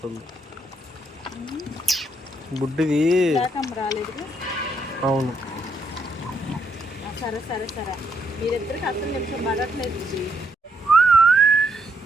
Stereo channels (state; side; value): normal; both; correlation 0.75